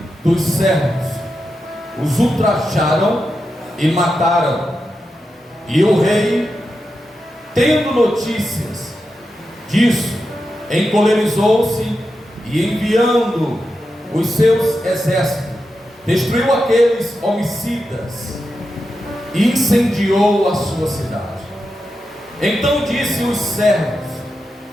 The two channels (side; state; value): both; normal; correlation 0.88